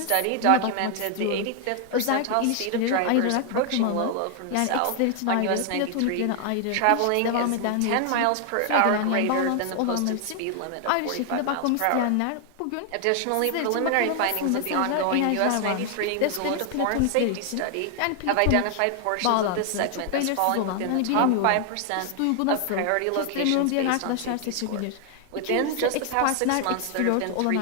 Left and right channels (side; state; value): both; different; correlation 0.00